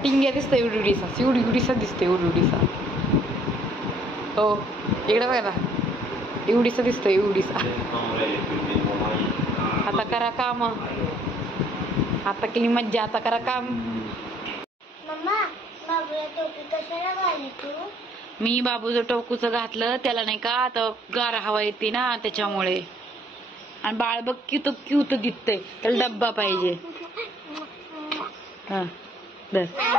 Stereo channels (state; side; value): normal; both; correlation 0.62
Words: टिंग्या दिसतोय उडीसा, उडीसा दिसतोय उडीसा. हो इकडे बघा ना, एवढीसा दिसतोय एवढीसा. आता करा काम, आता केली मज्जा, आता करा काम. मम्मा, बाबूला टोपी कशाला घाली तू? मी बाबूचं टोकूचं घातलं त्याला, नाही का आता गार हवा येते ना त्याच्यामुळे. आणि बाळ बघ क्यूत क्यूत दिसतंय, त्याला डब्बा पाहिजे. हा बस.